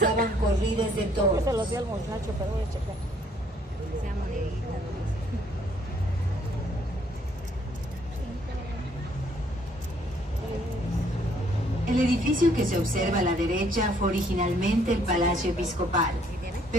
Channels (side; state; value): both; normal; correlation 0.65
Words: corridas de toros. Se los di al muchacho, pero voy a checar. Sea monedita. El edificio que se observa a la derecha fue originalmente el Palacio Episcopal,